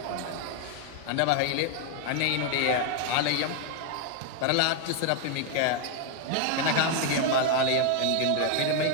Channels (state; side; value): different; both; correlation 0.00